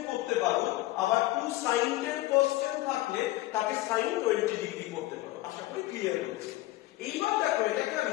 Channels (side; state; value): right; quieter; 17.6 dB